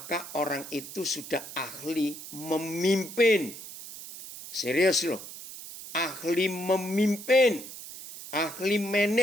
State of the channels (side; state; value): right; noise; hiss, 12 dB below the sound